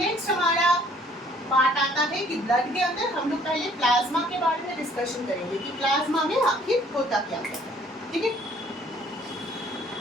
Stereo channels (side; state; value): both; normal; correlation 0.59